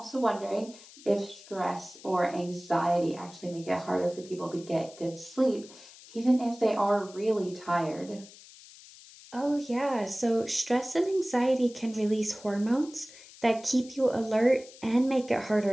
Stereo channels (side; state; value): left; noise; hiss, 20 dB below the sound